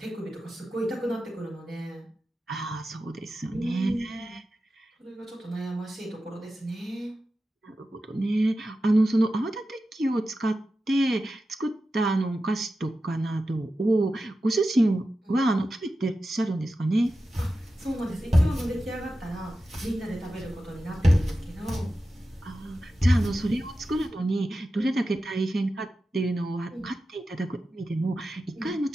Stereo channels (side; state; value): both; normal; correlation 0.92